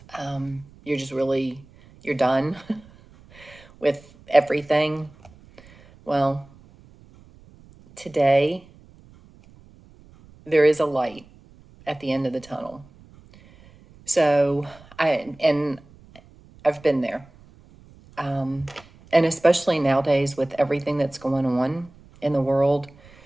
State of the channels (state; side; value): noise; right; rumble, 25 dB below the sound